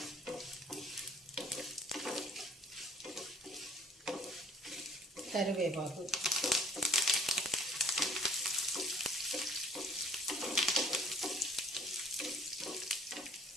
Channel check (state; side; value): normal; both; correlation 0.56